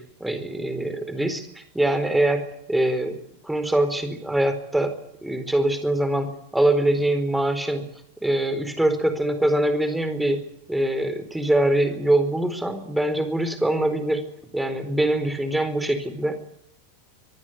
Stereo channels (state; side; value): normal; both; correlation 0.85